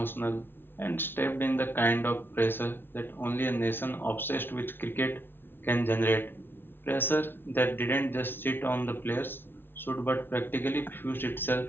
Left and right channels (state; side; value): late; right; 0.10 ms